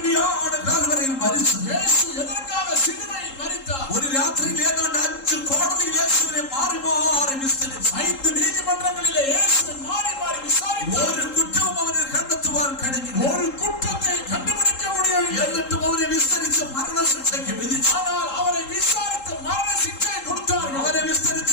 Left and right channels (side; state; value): right; late; 3.8 ms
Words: കാൽവരിയിൽ മരിച്ചത്? യേശു എதற்காக சிலுவையில் மரித்தார்? ഒരു രാത്രിയിൽ ഏതാണ്ട് 5 കോടതിയിൽ യേശുവിനെ മാറി മാറി വിസ്തരിച്ചു. 5 നീതിമன்றങ്ങളിലെ യേശുவை மாறி மாறி விசாரித்தார். ഒരു കുറ്റവും അവന് കണ്ടെത്തുവാൻ കഴിഞ്ഞില്ല. ஒரு குற்றத்தை கண்டுபிடிக்க முடியவில்லை. എന്നിട്ടും അവനെ വിസ്തരിച്ച് മരണശിക്ഷയ്ക്ക് വിധിച്ചു. ஆனால் அவரை விசாரித்து மரண சிக்ஷை கொடுத்தார்கள். അവനെ വിസ്തരിച്ച